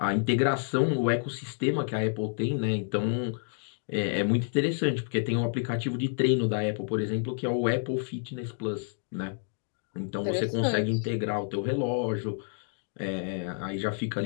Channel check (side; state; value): right; silent; digital silence